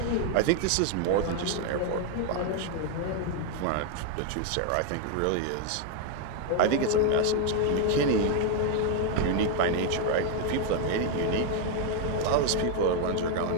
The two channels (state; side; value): different; both; correlation 0.00